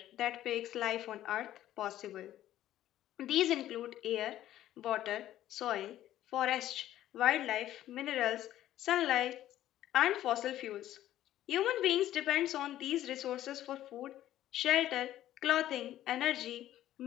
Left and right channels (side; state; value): right; quieter; 13.1 dB